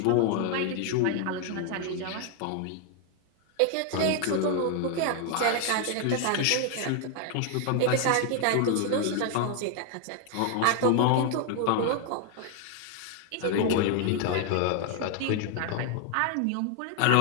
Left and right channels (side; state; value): both; different; correlation 0.00